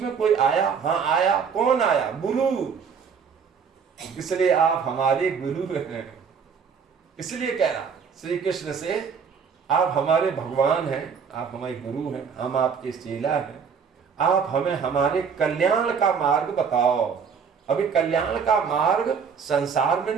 कोई आया, हाँ आया, कौन आया, गुरु। इसलिए आप हमारे गुरु हैं। इसलिए कह रहा श्री कृष्ण से, आप हमारे भगवान हैं, आप हमारे गुरु हैं, हम आपके चेला हैं, आप हमें हमारे कल्याण का मार्ग बताओ। अभी कल्याण का मार्ग संसार में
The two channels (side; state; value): left; quieter; 6.4 dB